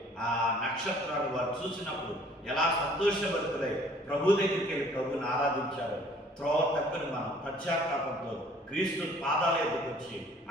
ఆ నక్షత్రాలు వారు చూసినప్పుడు ఎలా సంతోషభరితులై ప్రభు దగ్గరికి వెళ్ళి ప్రభుని ఆరాధించారు. త్రోవ తప్పిన మనం పశ్చాత్తాపంతో క్రీస్తు పాదాల ఎదుకు వచ్చి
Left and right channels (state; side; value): normal; both; correlation 0.55